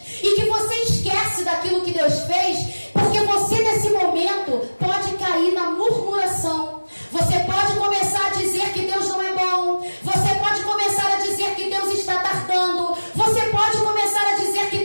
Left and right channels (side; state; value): both; inverted; correlation -1.00